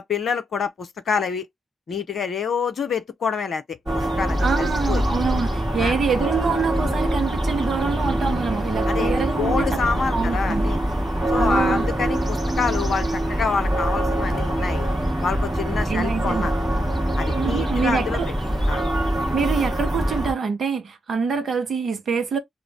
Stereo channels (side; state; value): both; normal; correlation 0.82